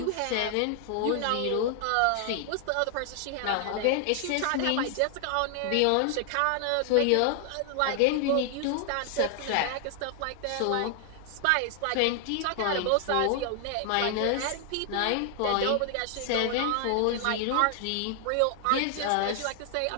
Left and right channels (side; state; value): both; different; correlation 0.00